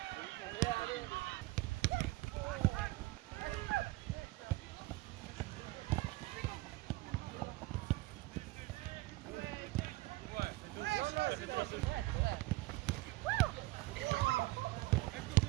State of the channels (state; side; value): quieter; left; 20.0 dB